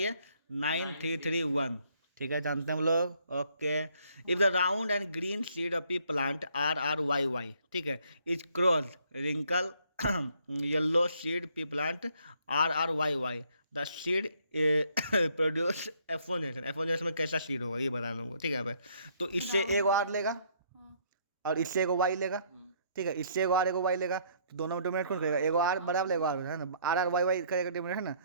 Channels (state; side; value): inverted; both; correlation -0.66